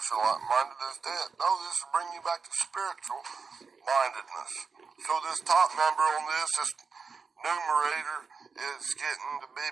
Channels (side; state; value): left; quieter; 5.1 dB